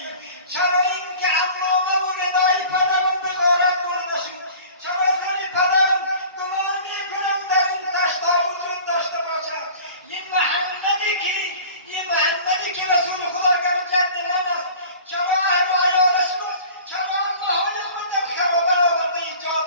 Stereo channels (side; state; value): both; inverted; correlation -0.44